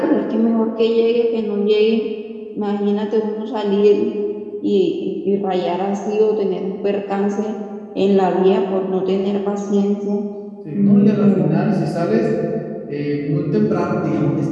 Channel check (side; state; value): both; identical; correlation 1.00